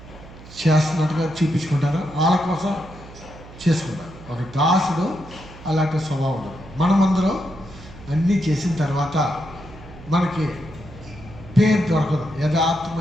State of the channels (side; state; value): right; noise; hum, 18 dB below the sound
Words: చేస్తున్నట్టుగా చూపించుకుంటారు, వాళ్ళ కోసం చేసుకుంటారు. ఒక దాసుడు అలాంటి స్వభావం ఉండదు. మనమందరం అన్నీ చేసిన తర్వాత మనకి పేరు దొరకదు.